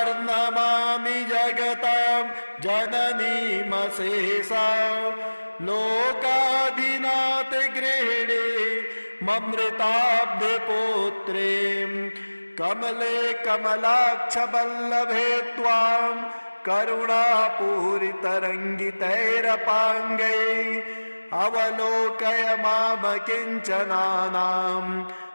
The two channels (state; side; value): inverted; both; correlation -1.00